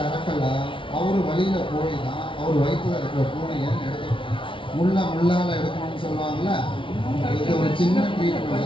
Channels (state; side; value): late; right; 0.25 ms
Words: அவர் வழியில போய் தான் அவர் வயிற்றுல இருக்கிற பூனையை எடுக்க முள்ளால எடுக்கணும்னு சொல்லுவாங்கல்ல. இது ஒரு சின்ன